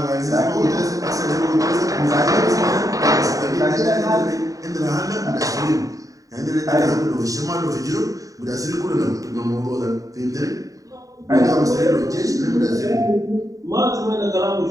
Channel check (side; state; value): left; late; 0.16 ms